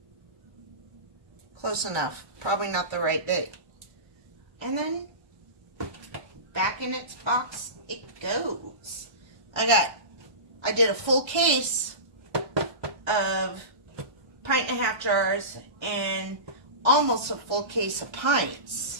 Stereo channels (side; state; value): left; late; 1.3 ms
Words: Close enough. Probably not the right big. And then back in its box it goes. I did a full case of 1.5 jars and almost a full case of